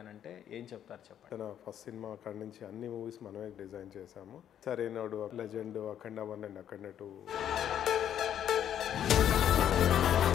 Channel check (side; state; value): right; quieter; 10.0 dB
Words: అని అంటే ఏం చెప్తారు చెప్పండి. తన ఫస్ట్ సినిమా అక్కడి నుంచి అన్ని మూవీస్ మనమే డిజైన్ చేశాము. Sarrainodu, legend, Akhanda 1 and Akhanda 2.